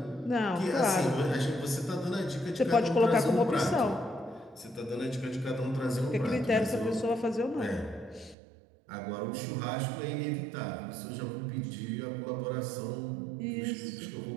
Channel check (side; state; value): left; drops out; at 8.3 s